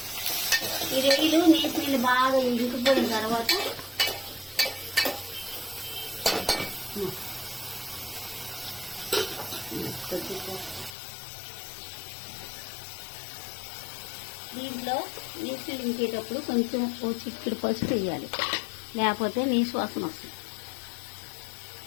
ఈ రొయ్యలు నీళ్ళు బాగా ఇంకిపోయిన తర్వాత దీంట్లో నీళ్ళు ఇంకేటప్పుడు కొంచెం ఓ చిక్కుడు పసుపు వేయాలి, లేకపోతే నీసు వాసన వస్తుంది.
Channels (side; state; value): right; drops out; at 11.0 s